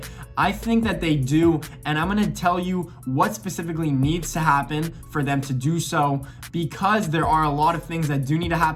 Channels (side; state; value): both; identical; correlation 1.00